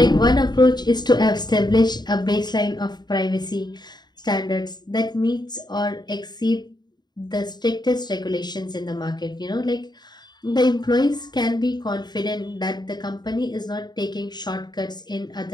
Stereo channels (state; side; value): late; right; 0.20 ms